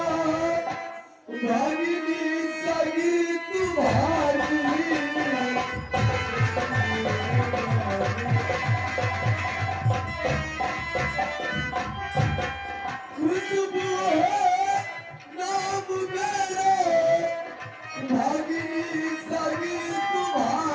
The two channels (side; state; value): both; identical; correlation 1.00